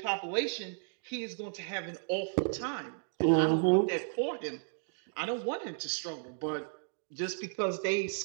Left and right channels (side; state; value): left; silent; digital silence